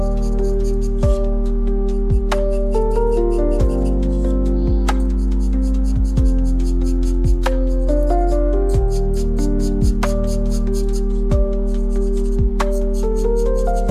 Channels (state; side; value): identical; both; correlation 1.00